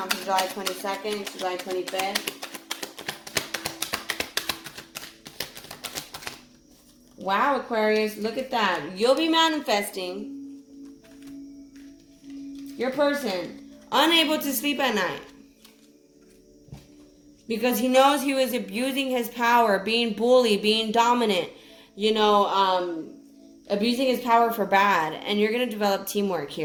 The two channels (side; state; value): both; identical; correlation 1.00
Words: from July 22nd to July 25th? Wow, Aquarius, look at that. You'll be manifesting your person unable to sleep at night because he knows he was abusing his power, being bullied, being dominant, abusing his power for bad. And you're going to develop teamwork